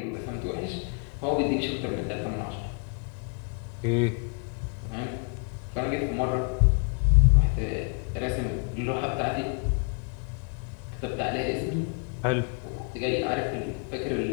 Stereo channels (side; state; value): right; quieter; 39.4 dB